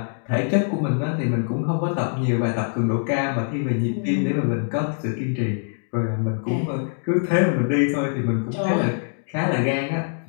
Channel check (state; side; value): silent; right; digital silence